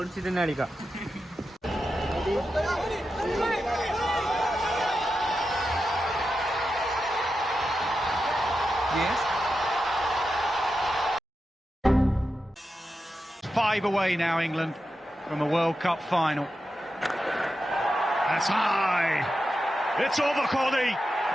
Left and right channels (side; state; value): both; normal; correlation 0.90